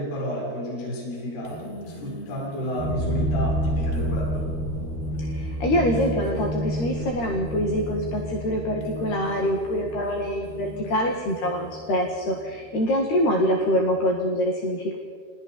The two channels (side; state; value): right; late; 13 ms